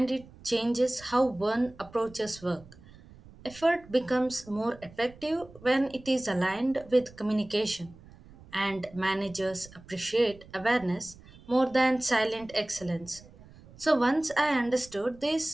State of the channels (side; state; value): right; noise; rumble, 22 dB below the sound